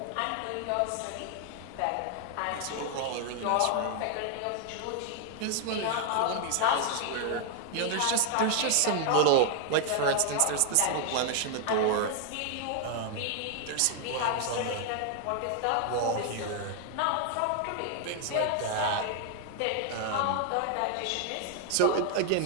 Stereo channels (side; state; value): both; different; correlation 0.00